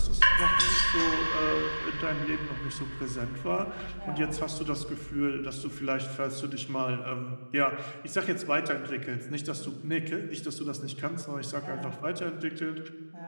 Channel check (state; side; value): inverted; both; correlation -1.00